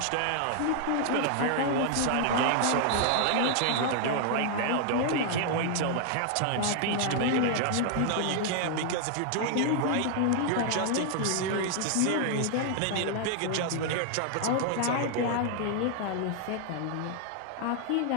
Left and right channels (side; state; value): both; different; correlation 0.00